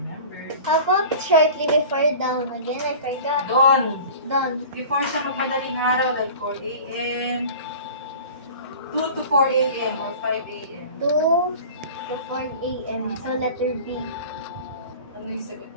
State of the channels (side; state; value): both; inverted; correlation -0.40